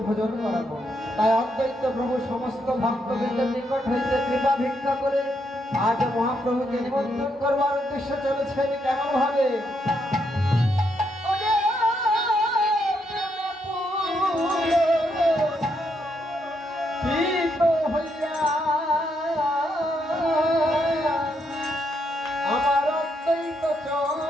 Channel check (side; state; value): both; normal; correlation 0.78